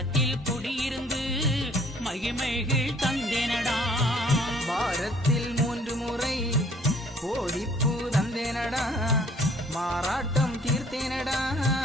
குடியிருந்து மகிமைகள் தந்தேனடா. வாரத்தில் 3 முறை கோடிப்பூ தந்தேனடா. மாறாட்டம் தீர்த்தேனடா.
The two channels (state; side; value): normal; both; correlation 0.58